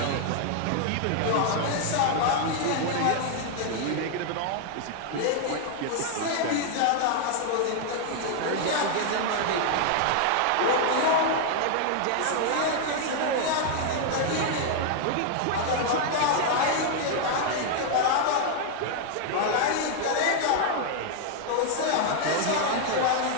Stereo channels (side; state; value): both; different; correlation 0.00